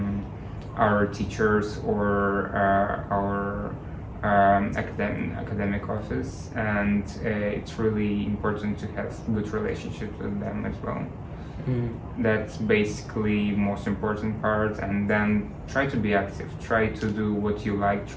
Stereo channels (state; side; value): identical; both; correlation 1.00